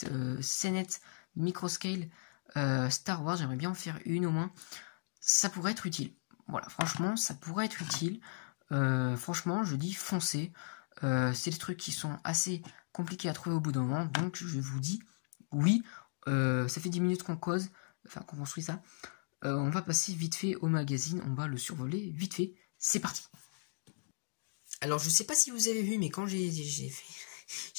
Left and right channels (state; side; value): silent; right; digital silence